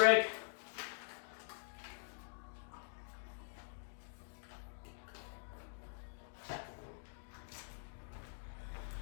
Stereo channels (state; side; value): silent; right; digital silence